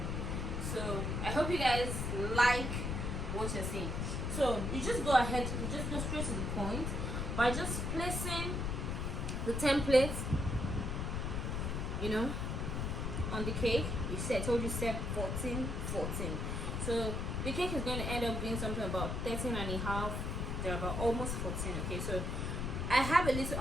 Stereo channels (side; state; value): left; noise; rumble, 1 dB below the sound